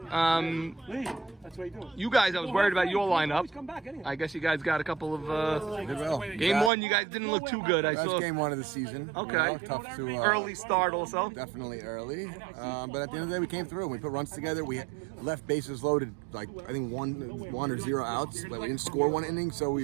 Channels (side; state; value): left; drops out; at 6.7 s